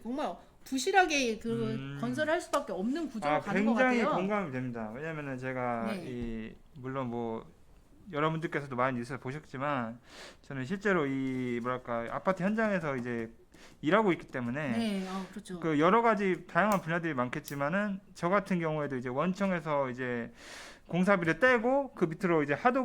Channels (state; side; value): identical; both; correlation 1.00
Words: 부실하게 그 건설을 할 수밖에 없는 구조가 가는 것 굉장히 같아요. 공감이 됩니다. 왜냐면은 제가 네. 물론 뭐 여러분들께서도 많이 뉴스를 보셨지만 저는 실제로 이 뭐랄까 아파트 현장에서 이제 일하고 있기 때문에 네, 그렇죠. 그 여러 가지 다양한 분야들이 많겠지만은 저 같은 경우에도 이제 원청에서 이제 공사비를 떼고 그 밑으로 이제